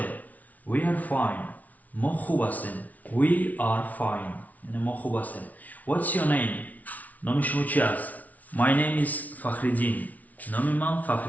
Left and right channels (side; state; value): right; late; 0.073 ms